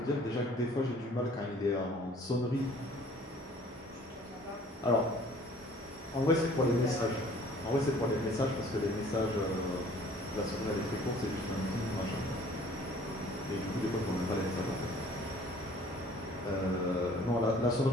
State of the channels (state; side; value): normal; both; correlation 0.53